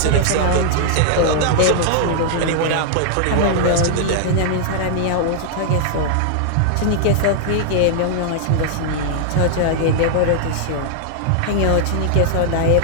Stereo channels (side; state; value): both; different; correlation -0.01